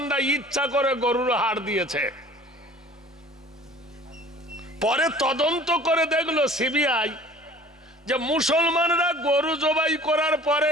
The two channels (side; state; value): both; normal; correlation 0.47